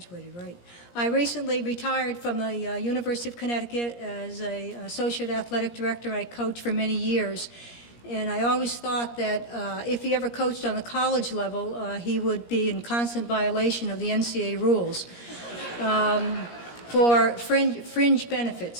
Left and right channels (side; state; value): right; late; 17 ms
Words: right? I recently retired from the University of Connecticut as an associate athletic director. I coached for many years. And I always thought that if he ever coached on the college level, he would be in constant violation of the NCAA rules for fringe